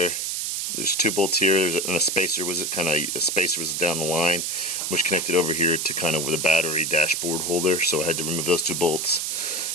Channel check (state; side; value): noise; right; hiss, 1 dB below the sound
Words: there's two bolts here, and a spacer was down the line, which connected over here to kind of with a battery dashboard holder, so I had to remove those two bolts.